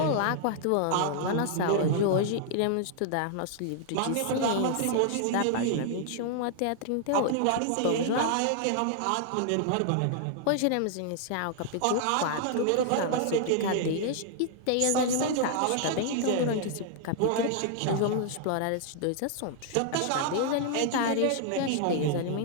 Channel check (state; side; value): different; both; correlation -0.01